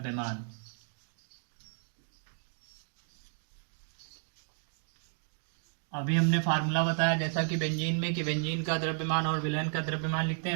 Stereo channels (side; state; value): left; silent; digital silence